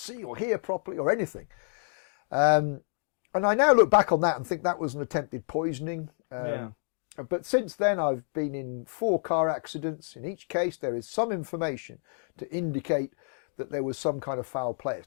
or hear properly or anything. And I now look back on that and think that was an attempted poisoning. But since then I've been in 4 car accidents. In each case there is some information to indicate that there was some kind of foul play.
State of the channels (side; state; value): right; silent; digital silence